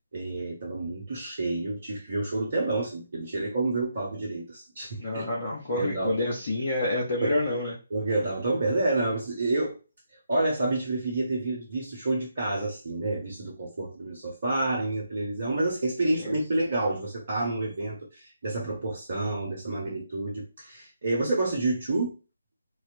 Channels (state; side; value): inverted; both; correlation -0.79